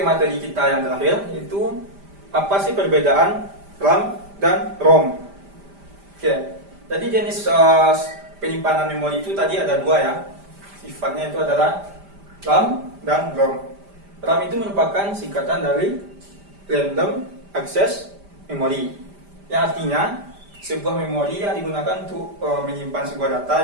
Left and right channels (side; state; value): left; late; 5.0 ms